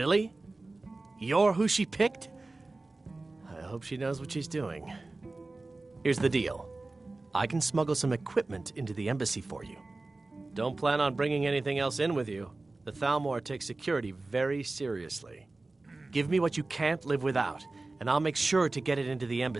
You're who she picked? I hope she knows what she's doing. Here's the deal. I can smuggle some equipment into the embassy for you. Don't plan on bringing anything else in with you. The Thalmor takes security very seriously. Give me what you can't live without, and I'll make sure to get it into the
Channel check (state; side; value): quieter; left; 3.2 dB